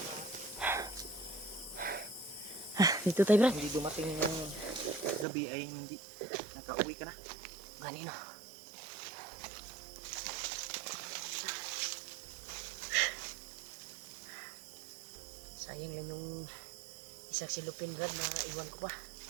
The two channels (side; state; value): left; drops out; at 5.2 s